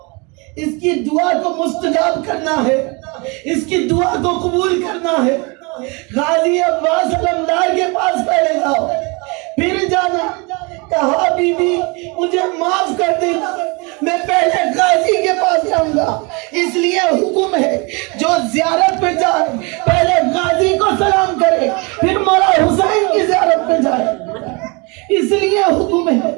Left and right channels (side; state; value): left; quieter; 29.4 dB